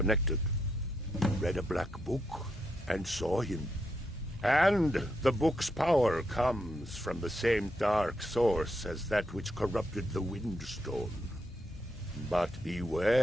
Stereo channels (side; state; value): both; normal; correlation 0.81